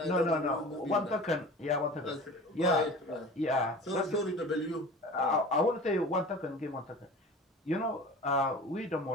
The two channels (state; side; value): normal; both; correlation 0.38